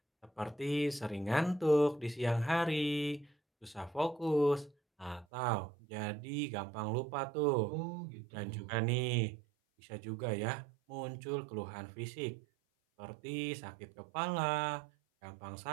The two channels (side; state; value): left; drops out; at 5.2 s